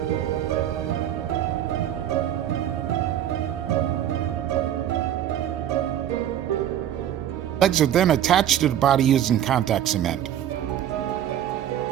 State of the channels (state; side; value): quieter; left; 10.8 dB